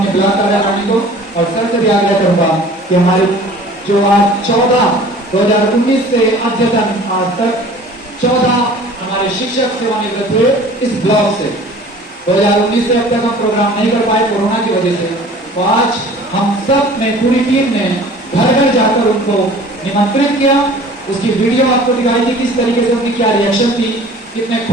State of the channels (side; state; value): both; normal; correlation 0.46